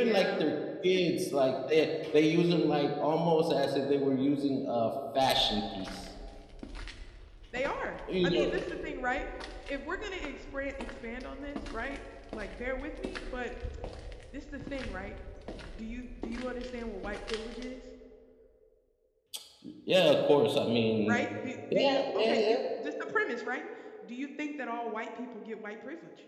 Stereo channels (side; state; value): both; identical; correlation 1.00